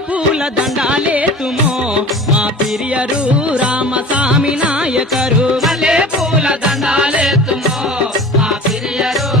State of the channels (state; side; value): normal; both; correlation 0.40